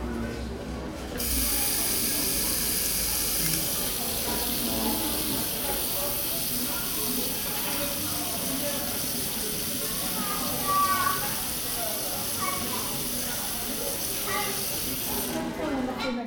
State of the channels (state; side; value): identical; both; correlation 1.00